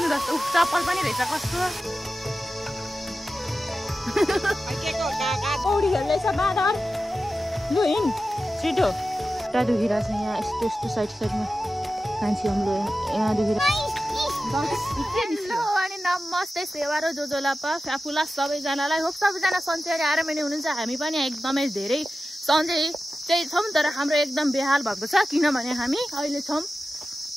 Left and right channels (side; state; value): both; normal; correlation 0.93